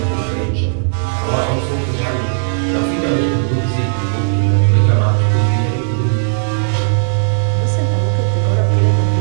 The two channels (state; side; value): silent; left; digital silence